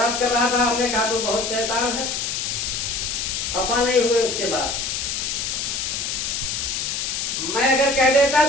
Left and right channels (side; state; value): left; noise; hiss, 2 dB below the sound